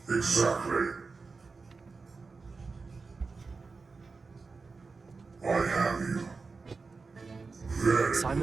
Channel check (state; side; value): quieter; left; 4.3 dB